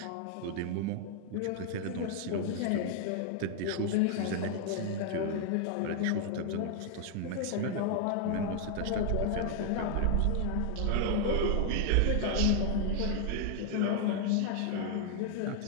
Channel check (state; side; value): different; both; correlation 0.00